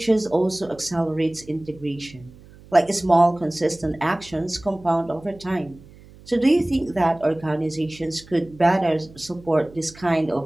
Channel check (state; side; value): noise; right; hum, 22 dB below the sound